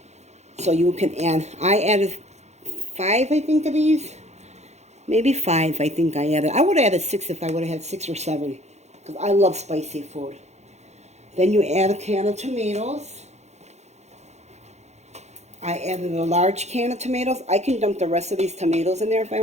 So you can add, I added 5, I think, of these. Maybe 5, I think I added. I would have added 6 if I would have had 6 or 7, because I love spicy food. Then you add a can of tomatoes. I added a large can of tomatoes. I can dump the rest of these tomatoes in there if I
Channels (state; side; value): late; left; 0.32 ms